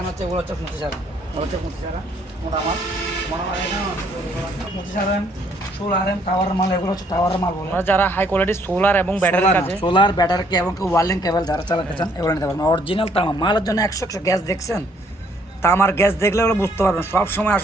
হচ্ছে এগুলো হচ্ছে 25 আরাম, এগুলো হচ্ছে 25 আরাম মোটা মাল, মোটা মাল এখানে আছে 25 আরাম, 16 আরাম টাওয়ার মাল। এগুলো হচ্ছে টাওয়ার মাল বলে। আমরা যারা হাই কোয়ালিটি সোলার এবং ব্যাটারির কাজে সোলার ব্যাটারি এবং ওয়ার্লিং কেবল যারা চালাতে চান এগুলো নিতে পারবেন। অরিজিনাল তামা মালের জন্য 100 গ্যাস দেখছেন, তামার গ্যাস দেখলে ওগুলো বুঝতে পারবেন। সব সময়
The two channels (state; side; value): normal; both; correlation 0.66